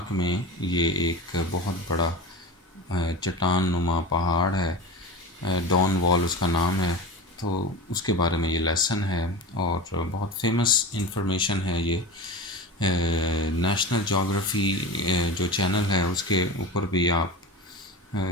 में ये एक बहुत बड़ा चट्टान नुमा पहाड़ है, डॉन वॉल उसका नाम है। तो उसके बारे में ये लेसन है और बहुत फेमस इंफॉर्मेशन है। ये नेशनल जोग्राफ़ी जो चैनल है उसके ऊपर भी आप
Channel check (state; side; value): normal; both; correlation 0.27